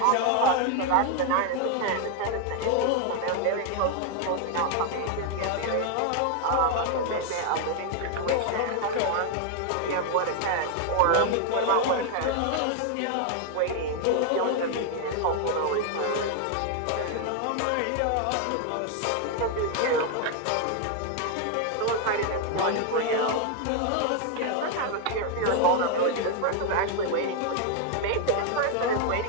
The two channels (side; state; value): both; different; correlation 0.00